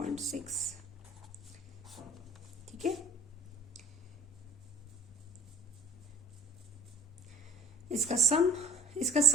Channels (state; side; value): normal; both; correlation 0.40